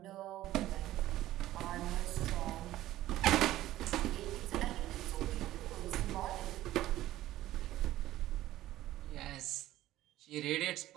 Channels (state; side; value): quieter; left; 14.8 dB